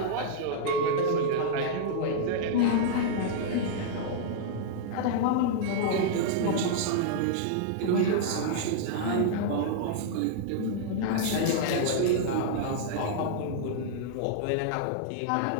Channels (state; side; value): different; both; correlation -0.02